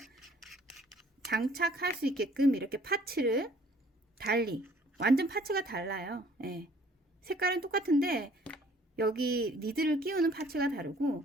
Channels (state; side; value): normal; both; correlation 0.57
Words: 장착할 수 있게끔 이렇게 파츠를 달리, 완전 파츠가 달라요. 예. 색깔은 똑같은데 여기 니드를 끼우는 파츠가